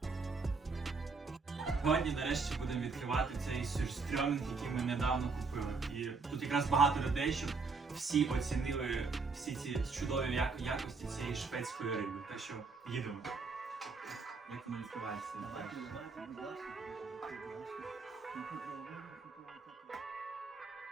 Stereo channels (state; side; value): quieter; left; 4.5 dB